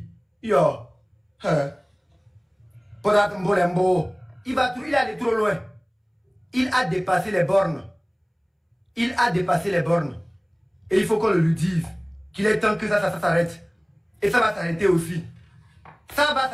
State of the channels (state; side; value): identical; both; correlation 1.00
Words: Yo, Podat Mbolembo, il est allé trop loin. Il a dépassé les bornes. Il a dépassé les bornes. Et il faut qu'on le lui dise qu'il est temps que ça s'arrête. Et ça va s'arrêter aussi. Ça va